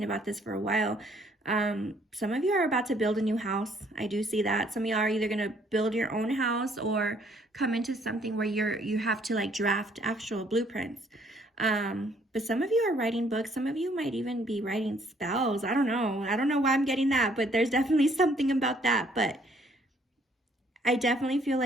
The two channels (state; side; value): normal; both; correlation 0.64